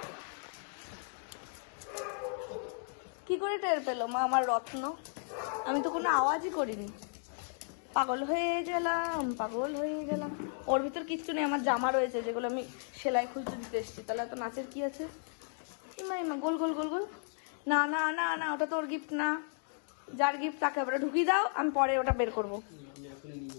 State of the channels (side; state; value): right; silent; 55 dB below the other